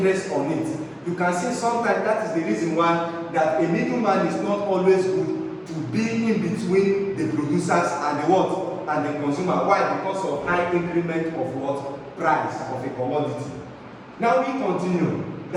on it. You can see sometimes that is the reason why that a middleman is not always good to be in between the producers and the what? And the consumer. Why? Because of high increment of what? Price of a commodity. Now we continue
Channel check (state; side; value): identical; both; correlation 1.00